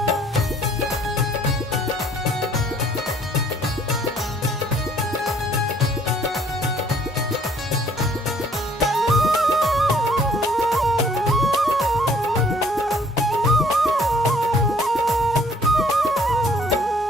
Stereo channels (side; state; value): both; normal; correlation 0.59